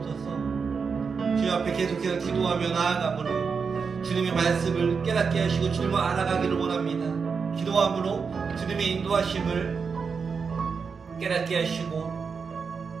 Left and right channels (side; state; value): left; quieter; 5.5 dB